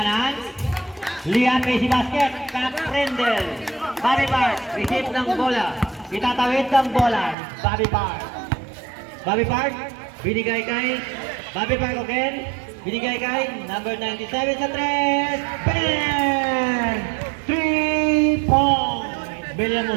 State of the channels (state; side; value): drops out; left; at 7.4 s